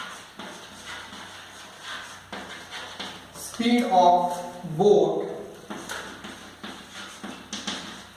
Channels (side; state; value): both; identical; correlation 1.00